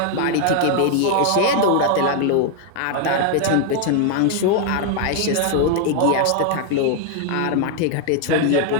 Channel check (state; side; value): different; both; correlation 0.00